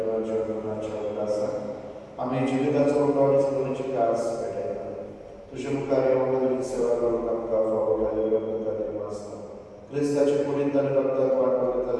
गुणाच्या उल्हासाक आम्ही जिविताचो उठावणी सोडूची कास पेटयता तुझे मुखार येवंक तुजी सेवा करूंक आमकां फावो केल्लो तुका दिवसना क्रिस्ताचे कुडींत आनी रगतांत वांटो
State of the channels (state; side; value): identical; both; correlation 1.00